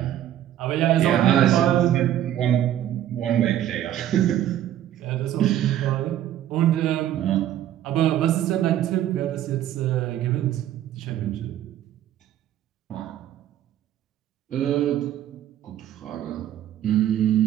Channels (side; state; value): left; quieter; 11.7 dB